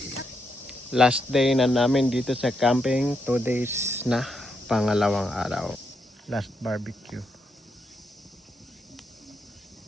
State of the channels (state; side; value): normal; both; correlation 0.81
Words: Last day na namin dito sa camping. 2 days na. Pangalawang araw. Last barbecue.